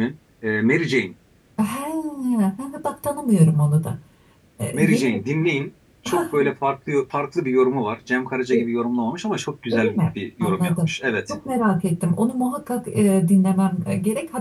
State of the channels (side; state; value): both; identical; correlation 1.00